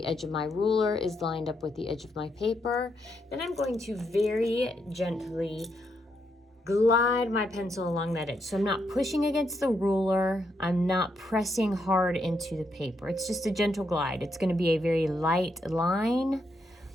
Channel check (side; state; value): both; normal; correlation 0.79